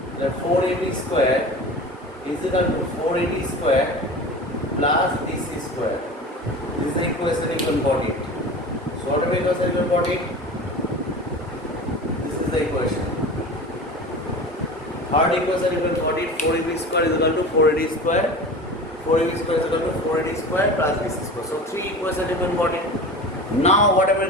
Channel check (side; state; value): both; normal; correlation 0.34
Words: The 4AB square is equal to 4AD square plus BC square. This is the equation you can got it. So whatever equation you got it, this is the equation. Third equation you can got it, 4AB square is equal to 4AD square. 4AB square is equal to 4AD square plus BC square. So three equations you can got it. Now whatever